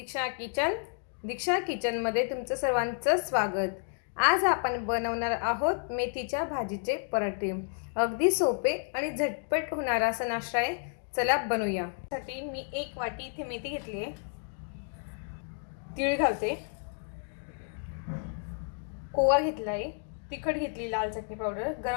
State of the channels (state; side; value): silent; right; 57 dB below the other